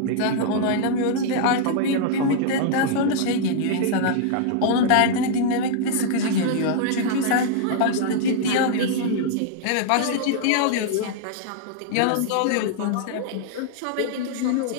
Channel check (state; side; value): different; both; correlation -0.01